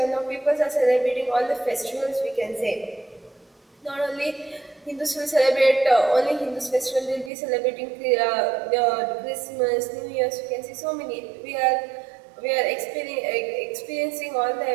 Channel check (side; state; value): left; drops out; at 7.3 s